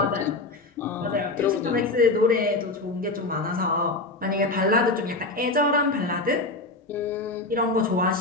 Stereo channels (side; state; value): right; quieter; 3.2 dB